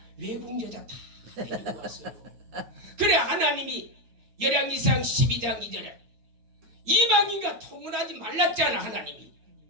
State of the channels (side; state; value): left; late; 8.7 ms